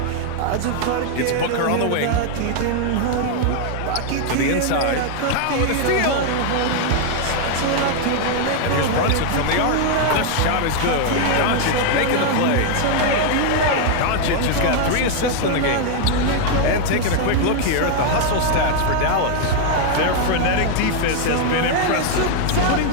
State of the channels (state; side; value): different; both; correlation 0.00